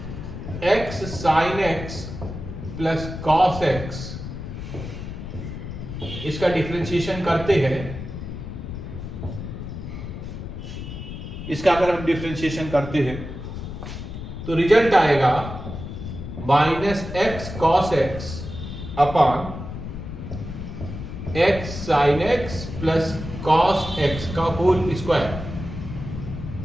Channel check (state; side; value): noise; left; rumble, 8 dB below the sound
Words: x sine x plus cos X इसका डिफरेंशिएशन करते हैं, इसका अगर हम डिफरेंशिएशन करते हैं तो रिजल्ट आएगा minus x cos x upon x sine x plus cos x का होल स्क्वायर।